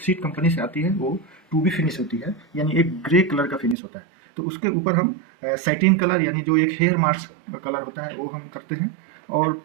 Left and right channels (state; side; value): drops out; left; at 3.8 s